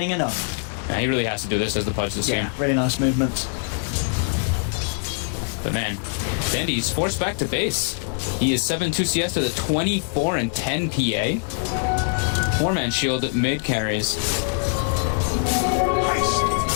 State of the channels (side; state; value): right; silent; digital silence